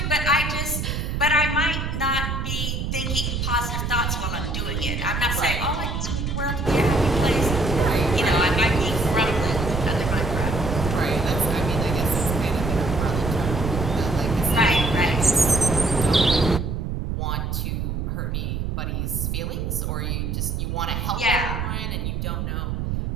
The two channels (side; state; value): right; noise; rumble, 2 dB below the sound